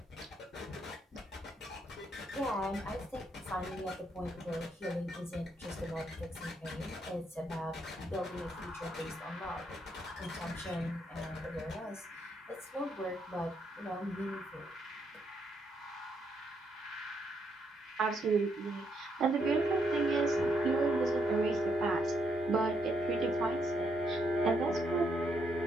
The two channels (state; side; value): normal; both; correlation 0.76